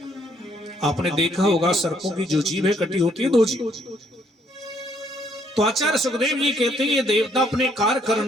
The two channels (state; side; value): normal; both; correlation 0.68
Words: आपने देखा होगा सर्पों की जो जीव है कटी होती है दो जीव। तो आचार्य सुखदेव जी कहते हैं ये देवता अपने कार्य